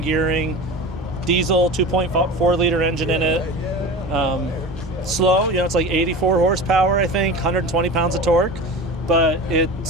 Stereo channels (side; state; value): both; normal; correlation 0.32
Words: gearing, diesel, 2.4 liter engine in it. Slow, it's like 84 horsepower, I think, 120 pounds of torque, but it